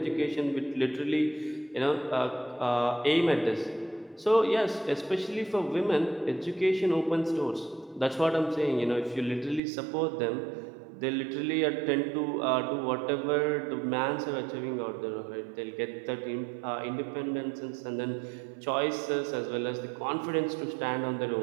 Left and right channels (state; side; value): drops out; left; at 9.6 s